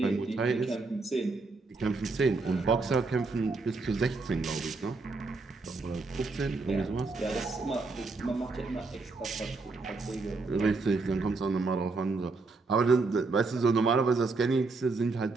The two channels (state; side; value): quieter; left; 3.8 dB